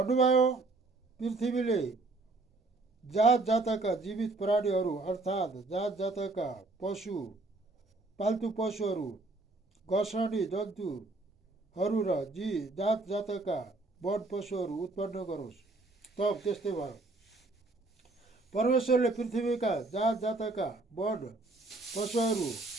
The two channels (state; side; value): quieter; left; 3.2 dB